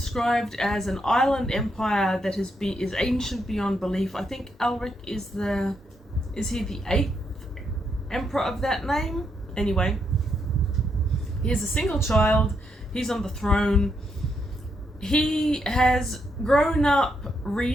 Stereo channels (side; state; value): both; normal; correlation 0.79